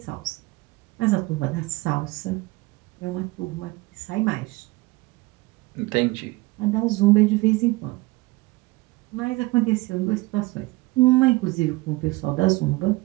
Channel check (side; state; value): left; quieter; 21.7 dB